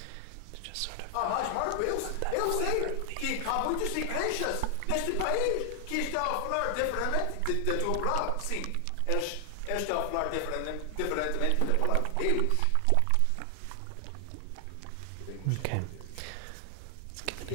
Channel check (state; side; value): different; both; correlation 0.00